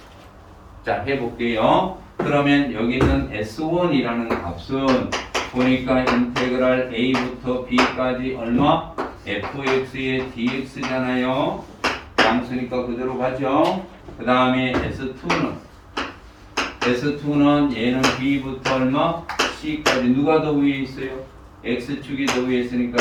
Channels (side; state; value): both; identical; correlation 1.00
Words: 자, 해볼게요. 그러면 여기 있는 s1이라는 값은 보니까 인테그랄 a부터 b까지 얼마? fx의 dx잖아요. 양수니까 그대로 가죠. 그 다음에 S2는 얘는 B부터 얼마? C까지 누가 더 위에 있어요? X축이 더 위에 있으니까